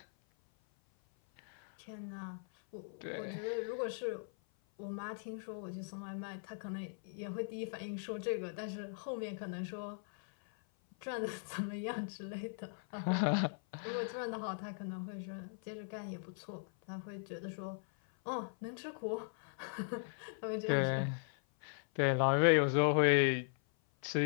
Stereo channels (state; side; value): silent; right; 52 dB below the other